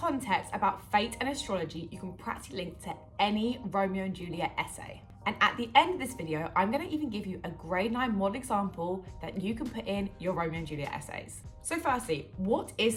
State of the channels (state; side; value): identical; both; correlation 1.00